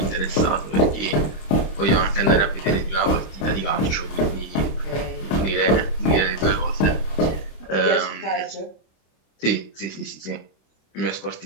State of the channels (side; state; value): right; late; 26 ms